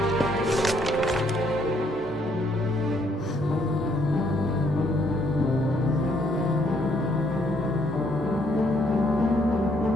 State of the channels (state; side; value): normal; both; correlation 0.69